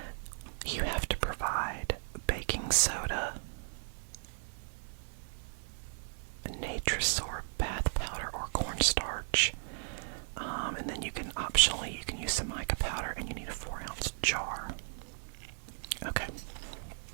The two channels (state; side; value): silent; left; digital silence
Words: You have to provide baking soda, Natrasor bath powder or cornstarch, and then you can use some mica powder, and you need a 4-ounce jar. Okay.